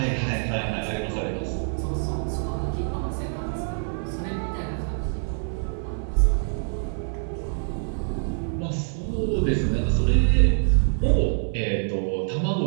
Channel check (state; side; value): silent; left; 55 dB below the other